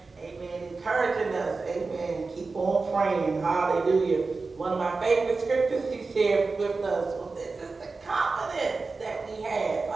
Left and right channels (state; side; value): quieter; left; 4.0 dB